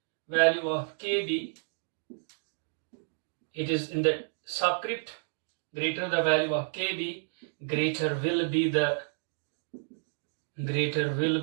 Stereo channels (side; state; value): left; silent; digital silence